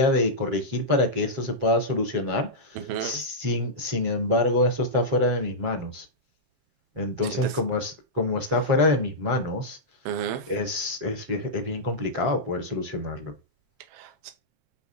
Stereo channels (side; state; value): left; late; 7.5 ms